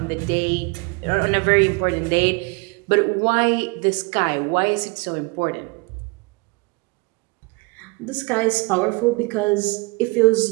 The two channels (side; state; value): left; quieter; 28.2 dB